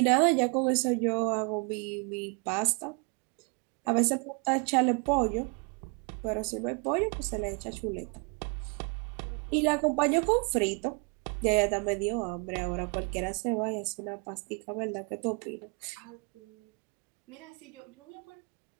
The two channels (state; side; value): quieter; left; 35.1 dB